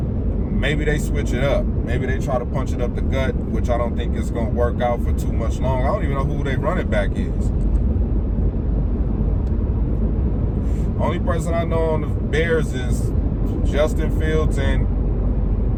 they switch it up. Maybe they try to punch it up the gut, which I don't think is going to work out for too much long. I don't even know who their running back is. Only person I know on the Bears is Justin Fields and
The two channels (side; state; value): both; identical; correlation 1.00